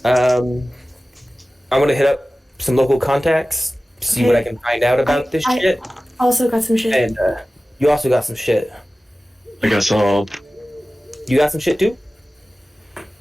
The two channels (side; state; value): both; normal; correlation 0.96